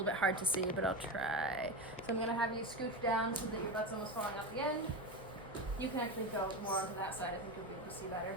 bit hard to see, but I'll try. So I'm gonna have you scooch down so that your butt's almost falling out the end. You can actually go more onto that side. I think you'll be able to see better.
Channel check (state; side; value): normal; both; correlation 0.19